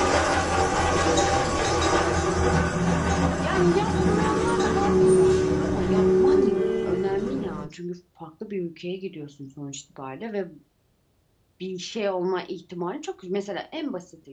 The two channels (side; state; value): both; identical; correlation 1.00